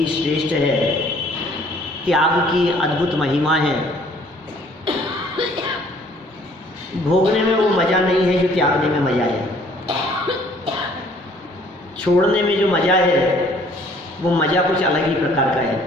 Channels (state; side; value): normal; both; correlation 0.58